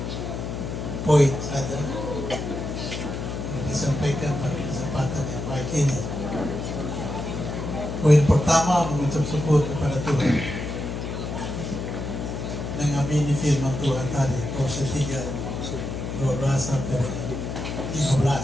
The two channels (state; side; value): noise; left; hum, 5 dB below the sound